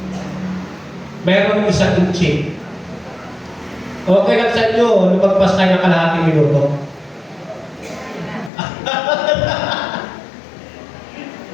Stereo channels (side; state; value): right; drops out; at 8.5 s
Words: Mayroong isang inchik. Okay lang sa inyo, lumagpas tayo ng kalahating minuto.